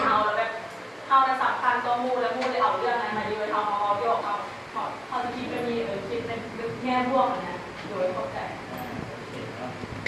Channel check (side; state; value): both; identical; correlation 1.00